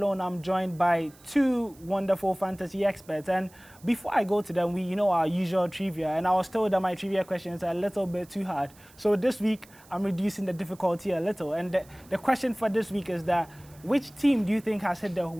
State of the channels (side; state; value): right; noise; hiss, 26 dB below the sound